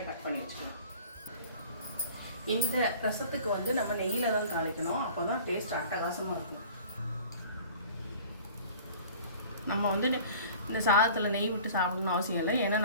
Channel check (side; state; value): both; inverted; correlation -0.46